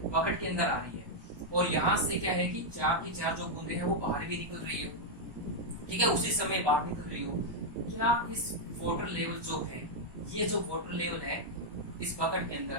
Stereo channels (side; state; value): left; late; 1.2 ms